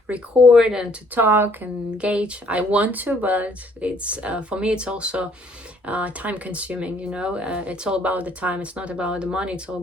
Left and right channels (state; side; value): normal; both; correlation 0.63